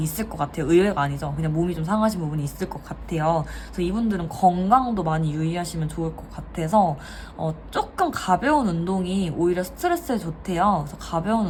있을 것 같아요. 의외가 아니죠. 그냥 몸이 좀 상하신 부분이 있을 것 같아요. 그래서 이분들은 건강도 많이 유의하시면 좋을 것 같아서 조금 가벼운 운동이 오히려 스트레스에 좋대요. 그래서 가벼운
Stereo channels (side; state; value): both; identical; correlation 1.00